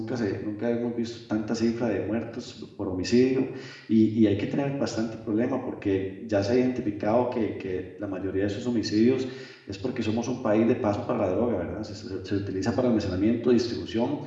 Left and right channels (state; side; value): identical; both; correlation 1.00